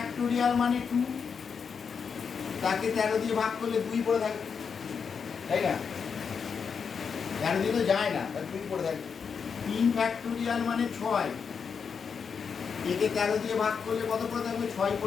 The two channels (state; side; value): quieter; right; 6.2 dB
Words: মানে 2, তাকে 13 দিয়ে ভাগ করলে 2 পড়ে থাকবে, তাই না? 13 দিয়ে তো যায় না, তার 2 পড়ে থাকবে। 3 ফ্যাক্টোরিয়াল মানে 6, একে 13 দিয়ে ভাগ করলে কত পড়ে থাকবে? 6